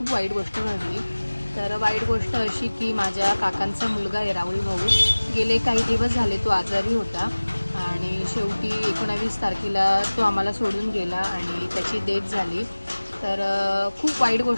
वाईट गोष्ट घडली. तर वाईट गोष्ट अशी की माझ्या काकांचा मुलगा आहे राहुल भाऊ, गेले काही दिवस झाले तो आजारी होता आणि शेवटी 19 तारखेला तो आम्हाला सोडून गेला आणि त्याची डेथ झाली. तर खूप वाईट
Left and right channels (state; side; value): inverted; both; correlation -1.00